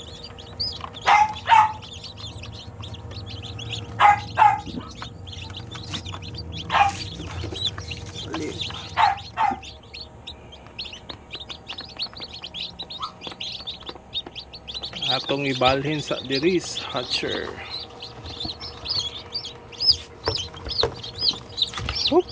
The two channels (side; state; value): both; identical; correlation 1.00